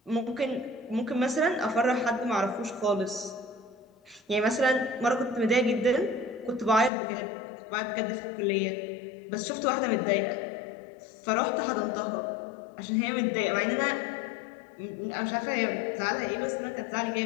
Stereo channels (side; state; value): right; drops out; at 6.9 s